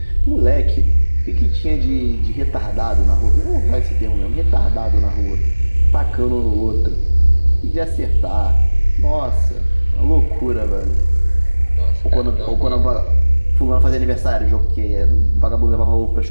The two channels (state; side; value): inverted; both; correlation -1.00